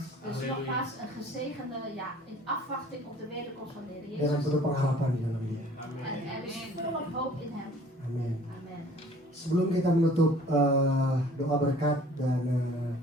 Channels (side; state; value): both; normal; correlation 0.52